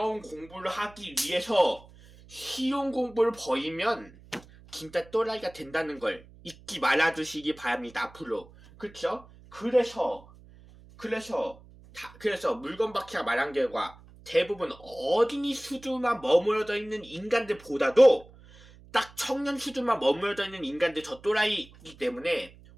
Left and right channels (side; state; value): right; noise; hum, 23 dB below the sound